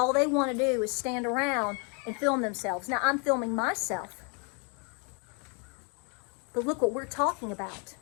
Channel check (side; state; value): right; quieter; 35.9 dB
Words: they want to do is stand around and film themselves. Now, I'm filming myself. But look what we're talking about.